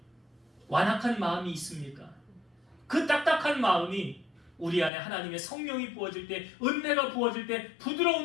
완악한 마음이 있습니까? 그 딱딱한 마음이 우리 안에 하나님의 성령이 부어질 때, 은혜가 부어질 때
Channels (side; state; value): right; drops out; at 4.9 s